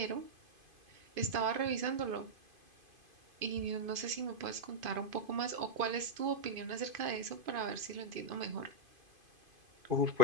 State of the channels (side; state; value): left; late; 2.5 ms